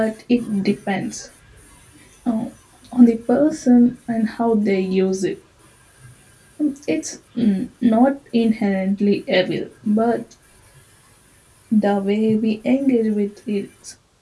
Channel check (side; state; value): both; identical; correlation 1.00